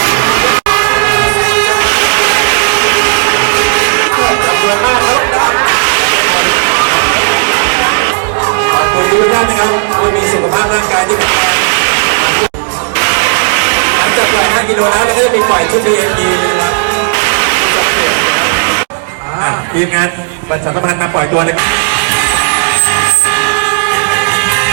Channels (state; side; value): silent; left; digital silence